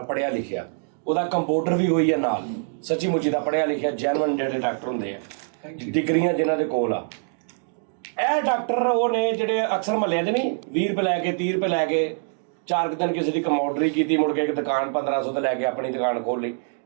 पढ़िया लिखिया, ਉਹਦਾ ਕੰਪਿਊਟਰ ਵੀ ਹੋਈ ਹੈ ਨਾਲ, ਸੱਚੀ ਮੁੱਚੀ ਦਾ ਪੜ੍ਹਿਆ ਲਿਖਿਆ ਜੈਨੂਅਨ ਜਿਹੜੇ ਡਾਕਟਰ ਹੁੰਦੇ ਆ, ਡਿਗਰੀਆਂ ਜਿਨ੍ਹਾਂ ਦੇ ਕੋਲ ਆ। ਇਹ ਡਾਕਟਰ ਉਹ ਨੇ ਜਿਹੜੇ ਅਕਸਰ ਮਹੱਲਿਆਂ 'ਚ ਨਹੀਂ 20 ਰੁਪਏ ਲੈ ਕੇ 30 ਰੁਪਏ ਲੈ ਕੇ 4 ਕੁ ਦਿਨ ਕਿਸੇ ਦੀ ਕਮੋਡਰੀ ਕੀਤੀ, ਮੁੜ ਕੇ ਇੱਕ ਦੁਕਾਨ 1500 ਤੇ ਲੈ ਕੇ ਆਪਣੀ ਦੁਕਾਨ ਖੋਲ੍ਹ ਲਈ,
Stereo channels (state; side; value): silent; left; digital silence